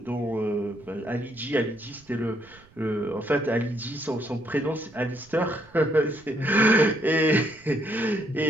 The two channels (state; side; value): noise; right; rumble, 26 dB below the sound